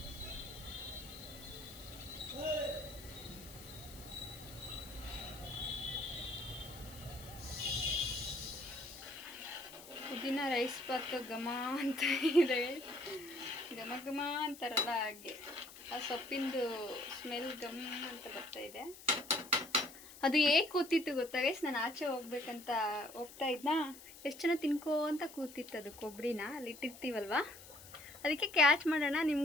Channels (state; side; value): noise; left; hiss, 17 dB below the sound